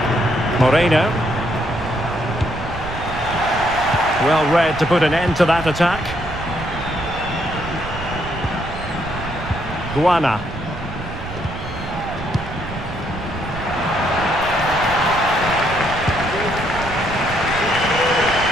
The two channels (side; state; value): right; noise; rumble, 9 dB below the sound